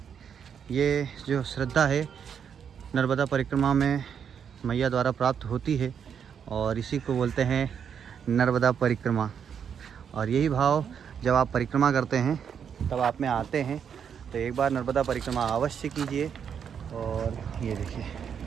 ये जो श्रद्धा है नर्मदा परिक्रमा में मैया द्वारा प्राप्त होती है, और इसी को बोलते हैं नर्मदा परिक्रमा। और यही भाव जब आप परिक्रमा करते हैं तब आप में आते हैं, तो एक बार नर्मदा परिक्रमा अवश्य कीजिए। और ये देखिए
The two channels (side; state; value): left; quieter; 7.7 dB